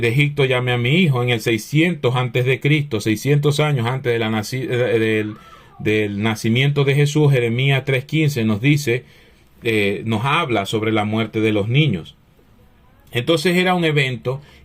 Egipto llamé a mi hijo, en el 600 antes de Cristo, 600 años antes de del nacimiento de Jesús. Jeremías 3:15 nos dice, nos habla sobre la muerte de los niños. Entonces era un evento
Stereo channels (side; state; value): both; identical; correlation 1.00